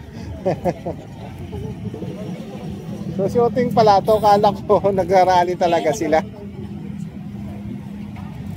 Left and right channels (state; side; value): identical; both; correlation 1.00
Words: So shooting pala to, kala ko nagrarally talaga sila.